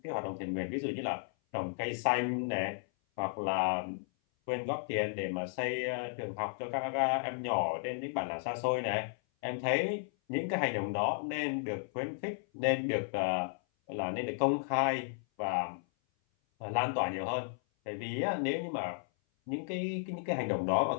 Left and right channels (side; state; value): right; silent; 55 dB below the other